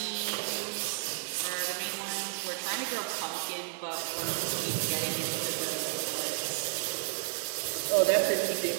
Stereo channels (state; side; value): silent; left; digital silence